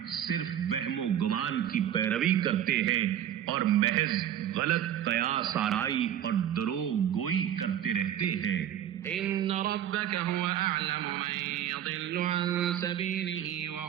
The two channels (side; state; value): left; quieter; 10.6 dB